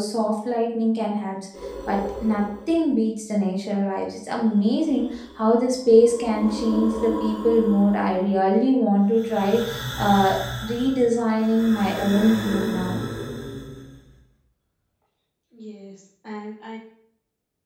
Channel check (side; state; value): both; identical; correlation 1.00